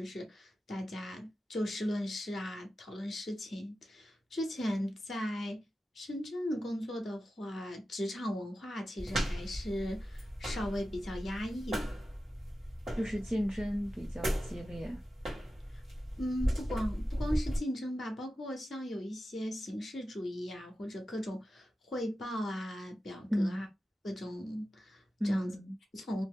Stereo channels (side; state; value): both; normal; correlation 0.93